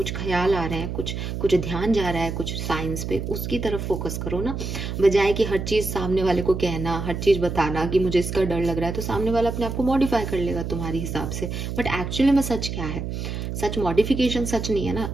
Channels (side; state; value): right; noise; hum, 5 dB below the sound